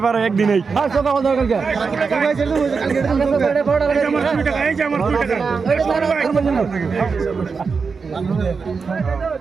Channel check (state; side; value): quieter; left; 5.1 dB